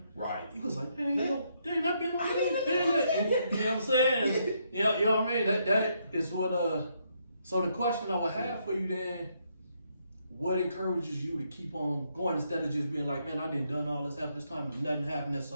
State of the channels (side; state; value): both; inverted; correlation -0.75